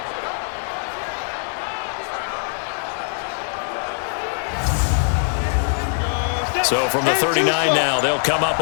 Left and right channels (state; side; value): silent; right; 64 dB below the other